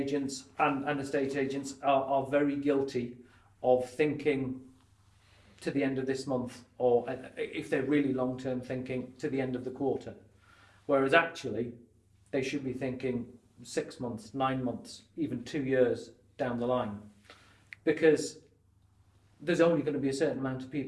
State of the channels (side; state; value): both; identical; correlation 1.00